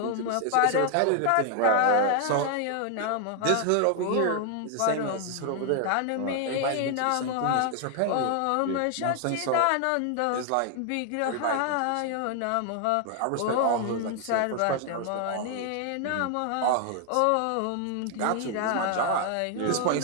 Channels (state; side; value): different; both; correlation 0.00